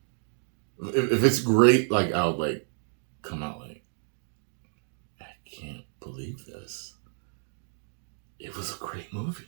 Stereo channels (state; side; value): silent; left; digital silence